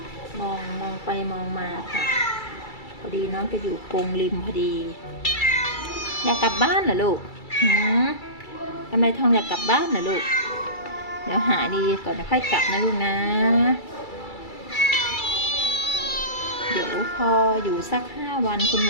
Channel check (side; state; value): right; late; 2.3 ms